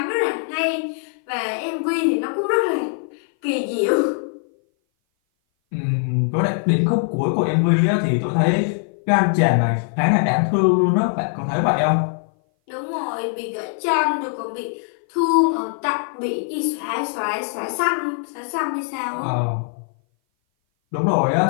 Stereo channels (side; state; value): right; silent; 58 dB below the other